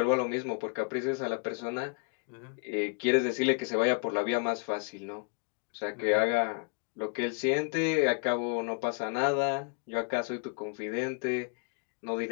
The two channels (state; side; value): quieter; right; 37.7 dB